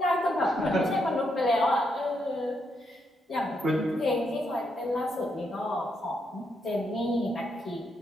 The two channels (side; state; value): both; normal; correlation 0.79